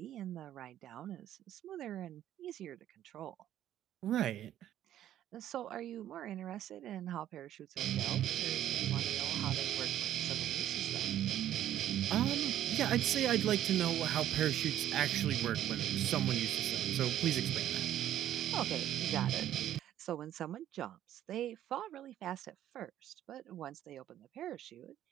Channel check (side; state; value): left; quieter; 11.8 dB